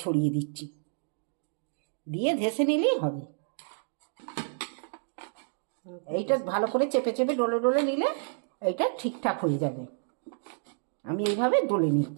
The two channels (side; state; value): left; silent; digital silence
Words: ছড়িয়ে দিচ্ছি, দিয়ে ধেসে নিলেই হবে। এইটা ভালো করে চেপে চেপে ডলে ডলে নিলে এইটা ঠিকঠাক হয়ে যাবে। আমি এইভাবে ডলে